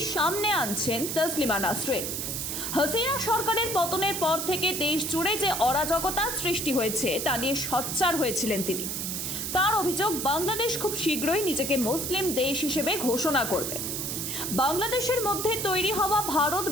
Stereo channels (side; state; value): right; noise; hiss, 3 dB below the sound